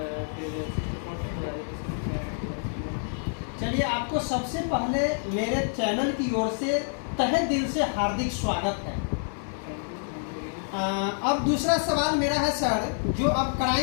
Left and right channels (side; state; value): right; silent; digital silence